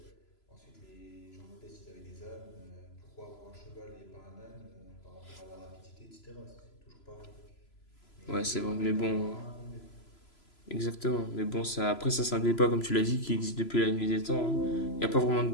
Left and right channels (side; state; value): right; late; 3.0 ms